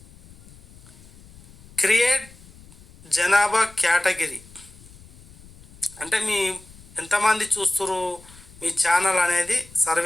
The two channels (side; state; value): left; noise; rumble, 23 dB below the sound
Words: క్రియేట్ జనాభా కేటగిరీ అంటే మీ ఎంతమంది చూస్తున్నారు మీ ఛానల్ అనేది